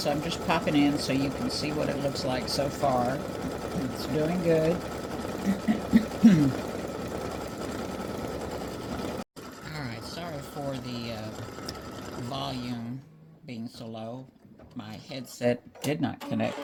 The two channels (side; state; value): both; identical; correlation 1.00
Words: I'm just popping in so you can see what it looks like so far. It's doing good. Alright, sorry for the volume being so low. My headset did not